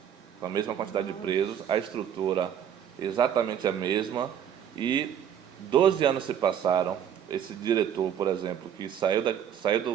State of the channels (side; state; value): left; quieter; 9.2 dB